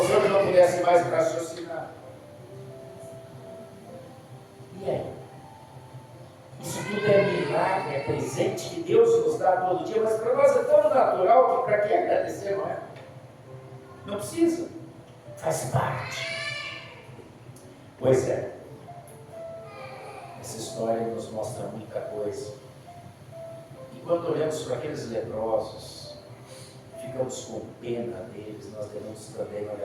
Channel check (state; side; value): identical; both; correlation 1.00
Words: hoje não pudesse mais raciocinar, e aí? Isso tudo é milagre, é presente que Deus nos dá todo dia, mas para nós é tão natural que para que agradecer, não é? Não precisa, faz parte. Pois é, essa história nos mostra muita coisa. E quando olhamos para aqueles leprosos, ficamos com pena deles, nós devemos também